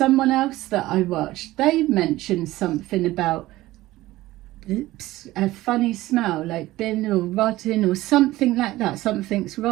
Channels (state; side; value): quieter; left; 17.1 dB